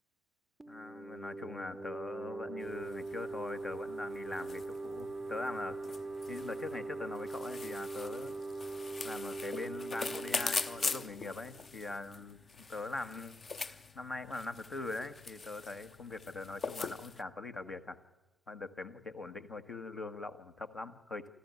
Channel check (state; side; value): normal; both; correlation 0.84